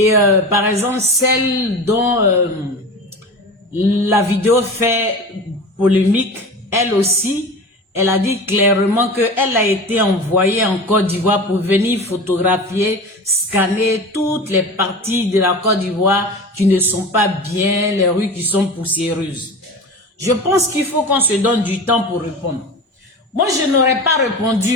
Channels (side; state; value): both; normal; correlation 0.32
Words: par exemple, celle dont la vidéo fait polémique, elle aussi, elle a dit clairement qu'elle a été envoyée en Côte d'Ivoire pour venir photographier, scanner toutes les parties de la Côte d'Ivoire qui ne sont pas bien, les rues qui sont poussiéreuses. Je pense qu'il faut qu'on se donne du temps pour répondre. Moi, je n'aurais pas